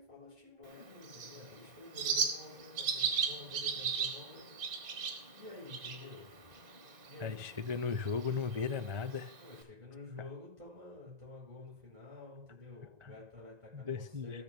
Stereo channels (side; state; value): left; late; 1.9 ms